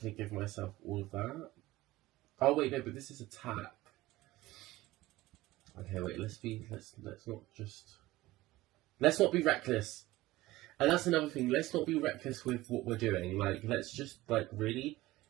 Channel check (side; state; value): left; quieter; 17.9 dB